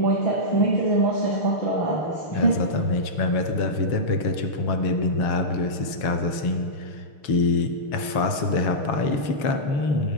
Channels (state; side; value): late; right; 6.7 ms